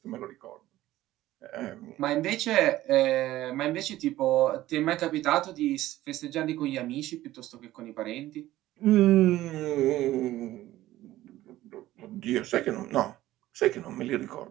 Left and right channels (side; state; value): left; quieter; 15.3 dB